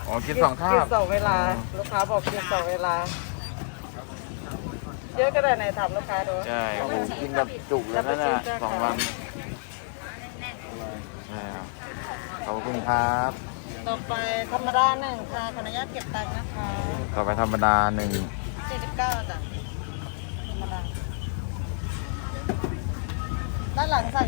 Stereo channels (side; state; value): right; silent; digital silence